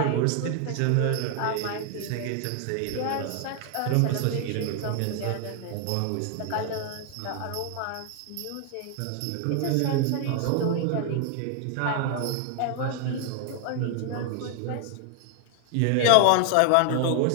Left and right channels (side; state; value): both; different; correlation 0.00